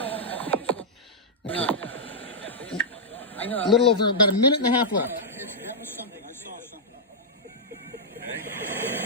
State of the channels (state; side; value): normal; both; correlation -0.09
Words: Okay. I know. A little over about a minute and a half left. That was something. I saw something.